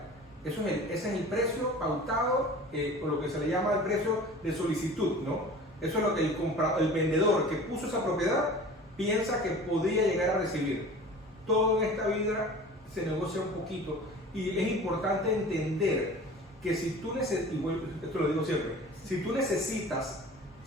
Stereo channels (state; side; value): normal; both; correlation 0.40